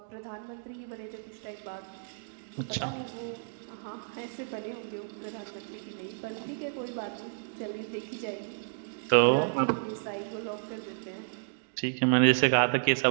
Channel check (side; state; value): left; silent; digital silence